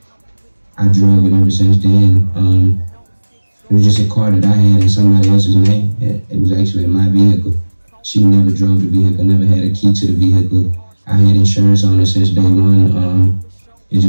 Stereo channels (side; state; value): both; inverted; correlation -1.00